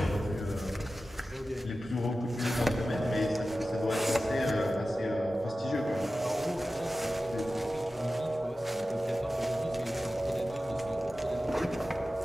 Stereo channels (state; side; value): normal; both; correlation 0.94